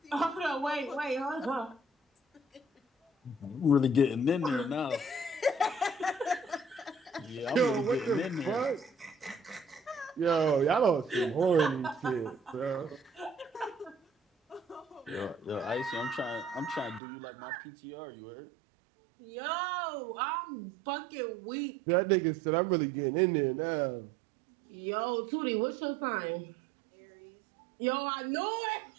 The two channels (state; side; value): drops out; left; at 17.0 s